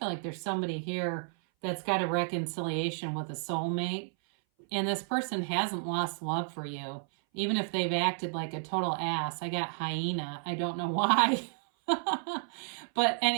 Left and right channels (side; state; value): left; silent; 57 dB below the other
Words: like there's somebody here that's got a reconciliation with a soulmate, and this person hasn't lost love for you, even if they've acted like a total ass. I got hyena. I don't know why. But